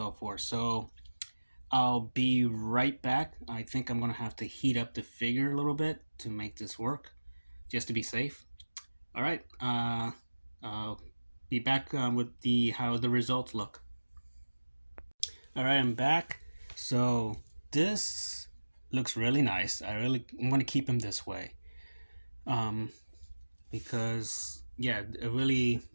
forth. So I'll be right back. I think I'm gonna have to heat up the figure a little bit to make this work, just to be safe. All right. I'll be back with the how the results look. All right, I'm back. So this looks really nice. I'm gonna keep him this way, because yeah, it really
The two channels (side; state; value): both; inverted; correlation -1.00